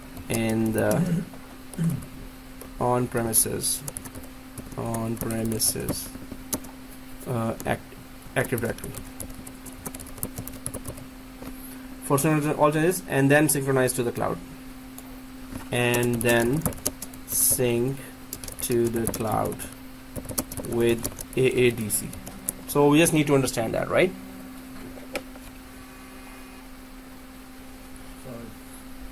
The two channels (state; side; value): identical; both; correlation 1.00